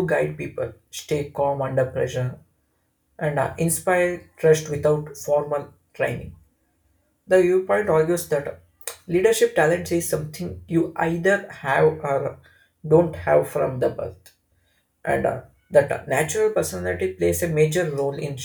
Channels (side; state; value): both; identical; correlation 1.00